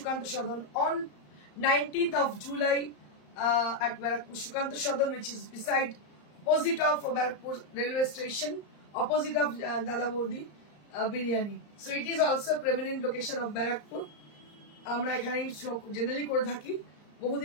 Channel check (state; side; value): late; right; 34 ms